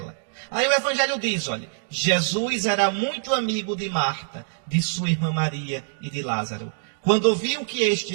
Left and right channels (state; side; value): silent; left; digital silence